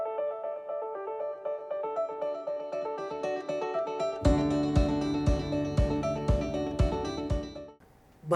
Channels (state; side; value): identical; both; correlation 1.00